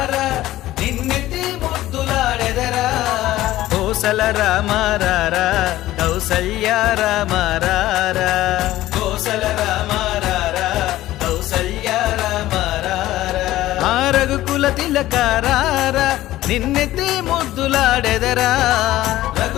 నిన్నెత్తి ముద్దులాడెదరా కోసల రామారారా కౌసల్య రామారారా కోసల రామారారా కౌసల్య రామారారా ఆ రఘుకుల తిలకారారా నిన్నెత్తి ముద్దులాడెదరా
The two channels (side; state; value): right; quieter; 15.4 dB